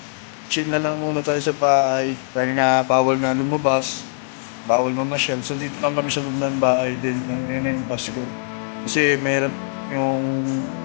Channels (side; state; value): right; silent; digital silence